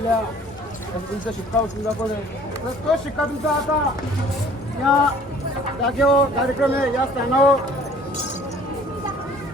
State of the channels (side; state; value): both; normal; correlation 0.52